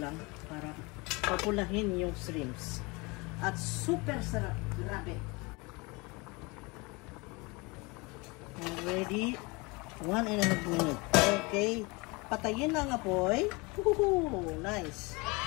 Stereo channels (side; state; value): right; quieter; 26.6 dB